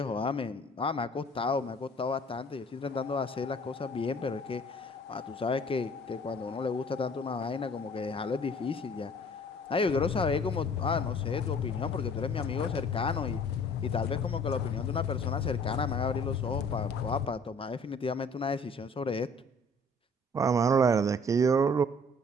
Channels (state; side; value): normal; both; correlation 0.53